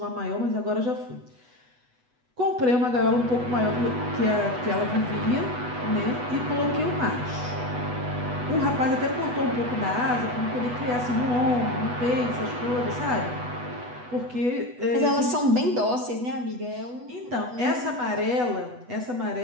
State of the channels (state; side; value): late; left; 8.1 ms